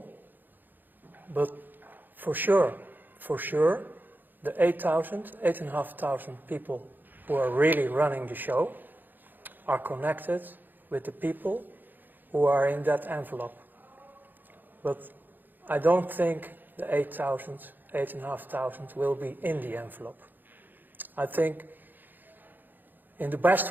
but for sure, the 8,500 people who are really running the show are connected with the people who are in that envelope. But I don't think the 8,500 will be in the envelope. I think in the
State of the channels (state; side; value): late; left; 0.089 ms